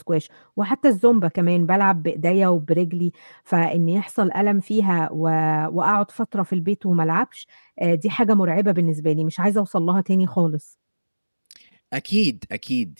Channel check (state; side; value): inverted; both; correlation -1.00